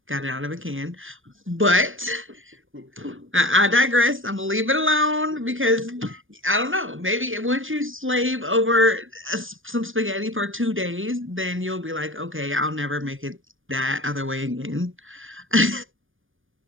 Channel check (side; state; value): left; late; 0.58 ms